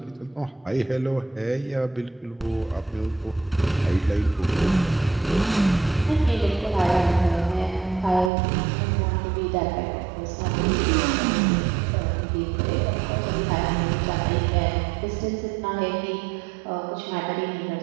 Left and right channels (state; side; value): drops out; left; at 8.3 s